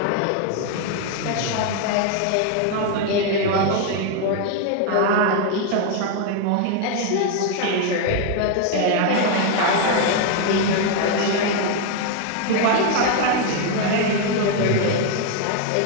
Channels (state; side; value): different; both; correlation 0.01